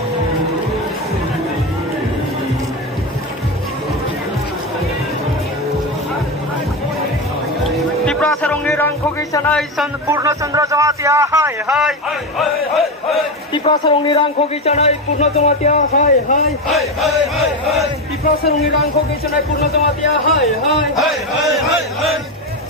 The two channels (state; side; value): normal; both; correlation 0.15